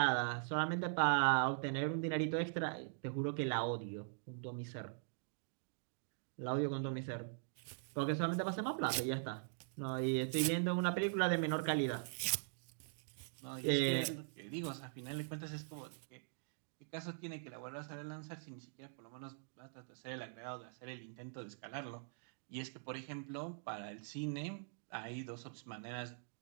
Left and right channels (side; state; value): left; silent; digital silence